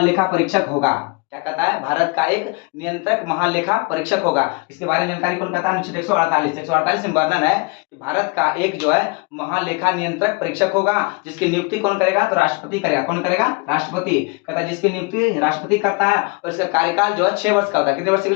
परीक्षक होगा। क्या कहता है? भारत का एक नियंत्रक महालेखा परीक्षक होगा। इसके बारे में जानकारी कौन कहता है? अनुच्छेद 148 में वर्णन है कि भारत का एक जो है महालेखा नियंत्रक परीक्षक होगा जिसकी नियुक्ति कौन करेगा? तो राष्ट्रपति करेगा। कौन करेगा? राष्ट्रपति। कहता है जिसकी नियुक्ति राष्ट्रपति करता है और इसका कार्यकाल जो है 6 वर्ष का होता है। कितने वर्ष के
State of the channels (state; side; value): quieter; right; 29.2 dB